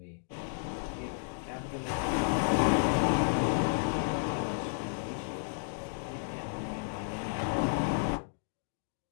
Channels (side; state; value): right; silent; digital silence